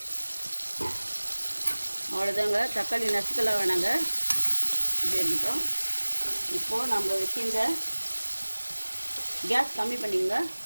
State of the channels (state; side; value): inverted; both; correlation -1.00